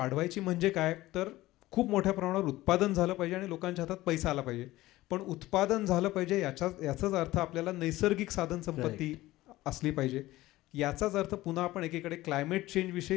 म्हणजे काय, तर खूप मोठ्या प्रमाणावर उत्पादन झालं पाहिजे आणि लोकांच्या हातात पैसा आला पाहिजे. पण उत्पादन झालं पाहिजे याचाच अर्थ आपल्याला नैसर्गिक साधन संपत्ती असली पाहिजे. याचाच अर्थ पुन्हा आपण एकीकडे क्लायमेट चेंज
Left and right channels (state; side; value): quieter; right; 17.3 dB